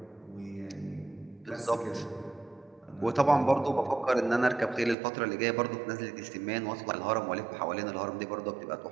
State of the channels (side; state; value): left; drops out; at 5.0 s